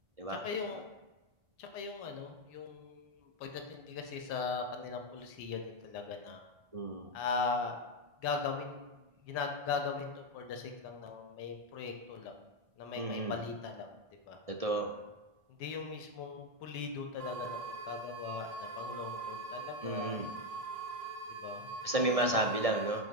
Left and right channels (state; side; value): late; left; 1.6 ms